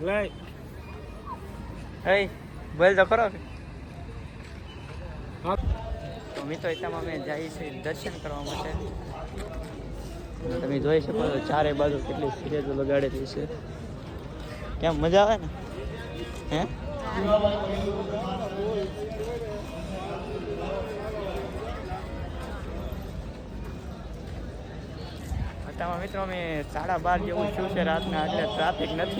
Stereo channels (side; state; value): both; identical; correlation 1.00